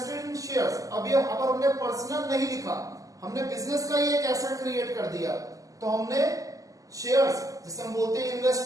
इन शेयर्स, अभी अगर हमने पर्सनल नहीं लिखा, हमने बिजनेस का ही एक एसेट क्रिएट कर दिया, तो हमने शेयर्स जिसे हम बोलते हैं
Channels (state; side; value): late; left; 0.17 ms